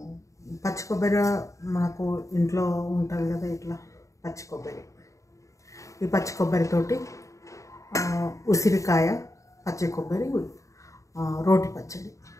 పచ్చి కొబ్బరి మనకు ఇంట్లో ఉంటుంది కదా, ఇట్లా పచ్చి కొబ్బరి. ఈ పచ్చి కొబ్బరితోటి ఉసిరికాయ పచ్చి కొబ్బరి రోటి పచ్చడి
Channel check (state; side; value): late; right; 0.15 ms